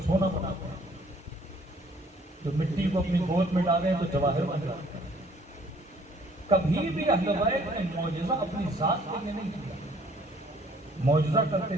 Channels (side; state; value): both; normal; correlation 0.59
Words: سونا بناتے ہیں، جو مٹی کو اپنی گود میں ڈالیں تو جواہر بن جاتے ہیں۔ کبھی بھی اہل بیت نے معجزہ اپنی ذات کے لیے نہیں کیا، معجزہ کرتے